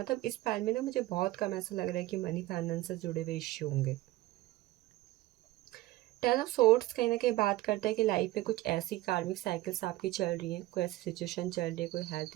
इस फाइल में ना मुझे बहुत कम ऐसा लग रहा है कि मनी फाइनेंस से जुड़े हुए इश्यू होंगे। टेन ऑफ सोर्ड्स कहीं ना कहीं बात करता है कि लाइफ में कुछ ऐसी कार्मिक साइकिल्स आपकी चल रही हैं, कोई ऐसी सिचुएशन चल रही है, कोई हेल्थ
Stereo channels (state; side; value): quieter; left; 17.1 dB